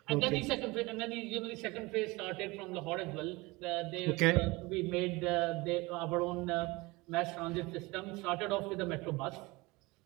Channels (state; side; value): quieter; left; 23.2 dB